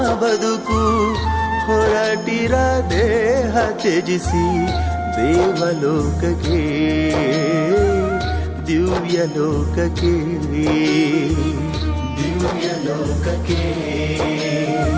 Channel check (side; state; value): both; identical; correlation 1.00